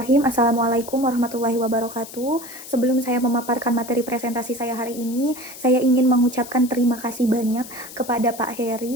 Assalamualaikum warahmatullahi wabarakatuh. Sebelum saya memaparkan materi presentasi saya hari ini, saya ingin mengucapkan terima kasih banyak kepada Pak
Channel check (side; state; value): left; noise; hiss, 15 dB below the sound